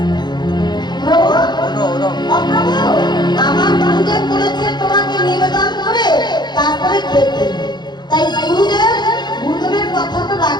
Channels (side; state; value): right; late; 0.21 ms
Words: আমার গুরুদেব বলেছে তোমাকে নিবেদন করে তারপরে খেতে। তাই গুরুদেবের কথা তো